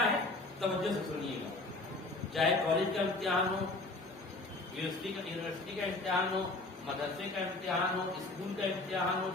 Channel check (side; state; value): right; quieter; 3.1 dB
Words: ہے؟ توجہ سے سنیے گا۔ چاہے کالج کا امتحان ہو، یونیورسٹی کا امتحان ہو، مدرسے کا امتحان ہو، اسکول کا امتحان ہو،